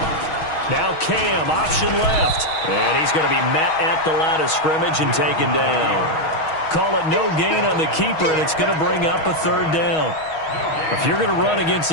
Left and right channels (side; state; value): right; late; 6.3 ms